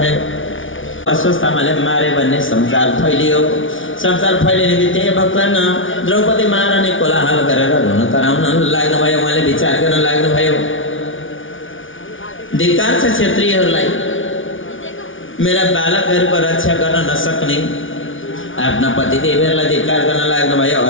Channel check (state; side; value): late; right; 0.57 ms